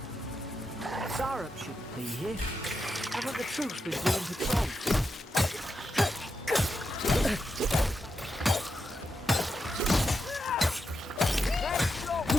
Sarup shouldn't be here. Haven't the troops been doing patrol? There's your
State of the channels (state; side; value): normal; both; correlation 0.86